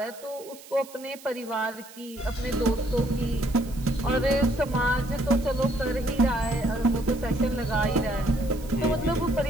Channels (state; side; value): noise; right; hiss, 19 dB below the sound